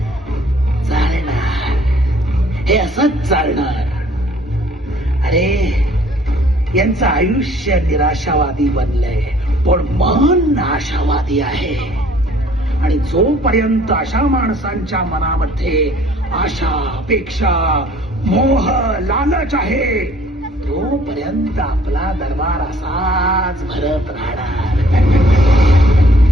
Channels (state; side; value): normal; both; correlation 0.57